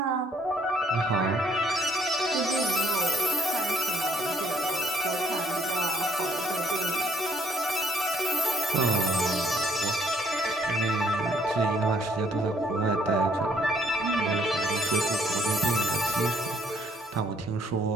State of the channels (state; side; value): normal; both; correlation 0.67